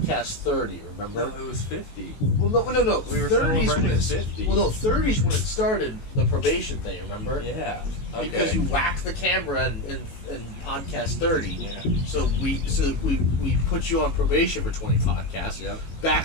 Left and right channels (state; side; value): late; right; 18 ms